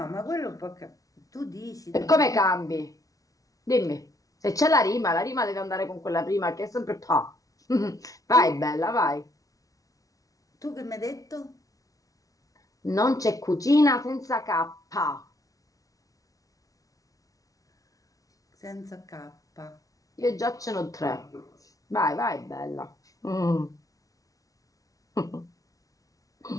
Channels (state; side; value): late; right; 0.17 ms